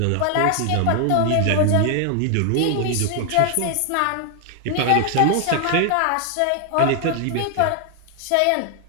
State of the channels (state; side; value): different; both; correlation 0.00